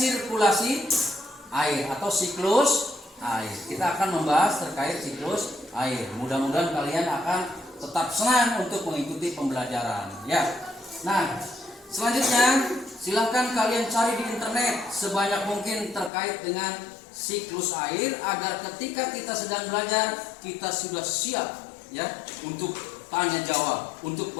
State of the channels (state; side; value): drops out; right; at 16.1 s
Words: air atau siklus air. Kita akan membahas terkait siklus air. Mudah-mudahan kalian akan tetap senang untuk mengikuti pembelajaran ya. Nah, selanjutnya silahkan kalian cari di internet sebanyak mungkin terkait dengan siklus air agar ketika kita sedang belajar kita sudah siap ya untuk tanya jawab, untuk